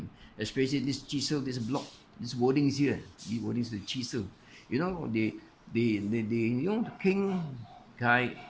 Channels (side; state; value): both; identical; correlation 1.00